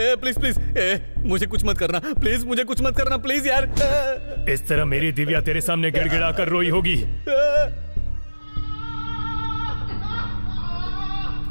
प्लीज प्लीज, मुझे कुछ मत करना प्लीज, मुझे कुछ मत करना प्लीज यार। इस तरह मेरी दिव्या तेरे सामने गिड़गिड़ा कर रोई होगी।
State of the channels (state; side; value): inverted; both; correlation -1.00